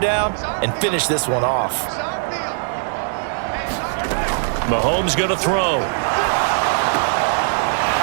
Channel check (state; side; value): silent; left; 66 dB below the other